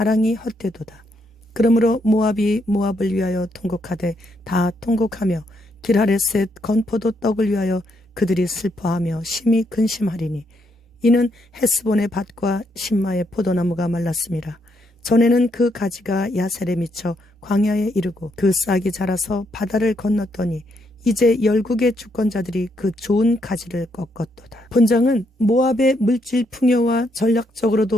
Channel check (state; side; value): normal; both; correlation 0.76